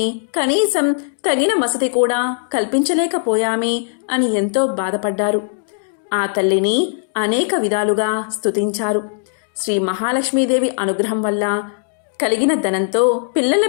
కనీసం తగిన వసతి కూడా కల్పించలేకపోయామే అని ఎంతో బాధపడ్డారు. ఆ తల్లిని అనేక విధాలుగా స్తుతించారు. శ్రీ మహాలక్ష్మీదేవి అనుగ్రహం వల్ల కలిగిన ధనంతో పిల్లల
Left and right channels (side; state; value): right; silent; digital silence